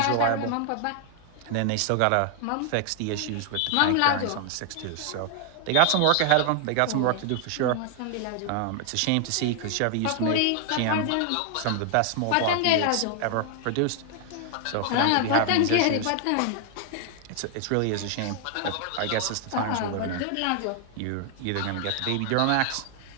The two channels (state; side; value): different; both; correlation 0.00